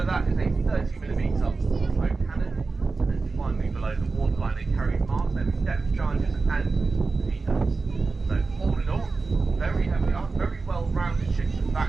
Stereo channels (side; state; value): left; quieter; 4.0 dB